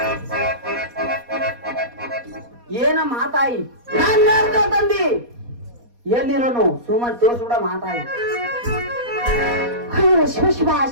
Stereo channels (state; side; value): late; left; 4.2 ms